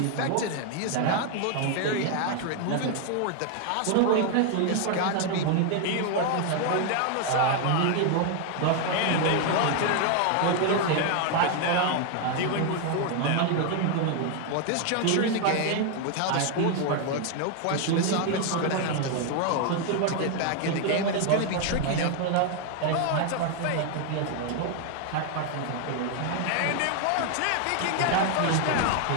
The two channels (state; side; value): different; both; correlation 0.00